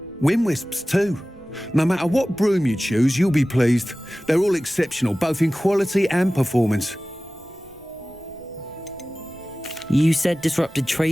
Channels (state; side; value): noise; right; rumble, 25 dB below the sound